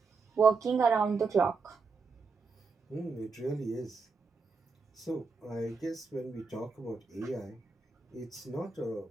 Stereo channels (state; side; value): quieter; left; 4.6 dB